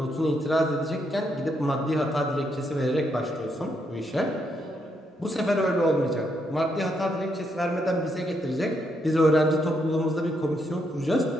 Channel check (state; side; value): normal; both; correlation 0.77